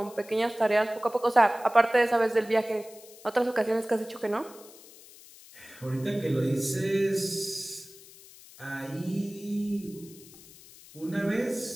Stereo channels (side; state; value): left; noise; hiss, 21 dB below the sound